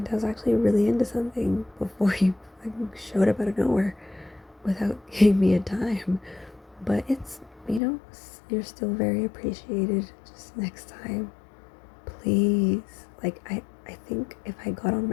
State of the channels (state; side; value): drops out; right; at 7.8 s